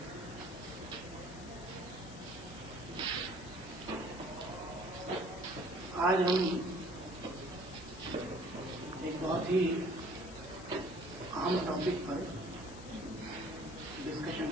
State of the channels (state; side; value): noise; left; hiss, 17 dB below the sound